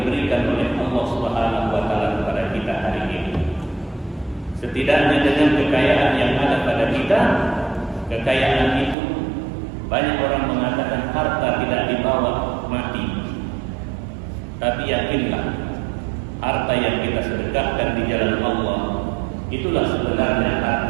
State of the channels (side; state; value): left; drops out; at 9.0 s